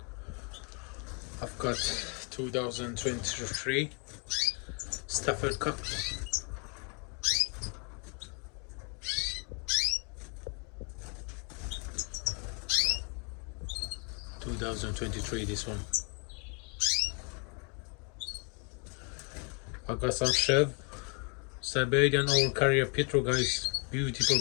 I've got 2023 Stafford cock. 2023, this one. I've got some Chev, Siberian old carrier Petro, guys. Beautiful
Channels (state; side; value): quieter; right; 35.8 dB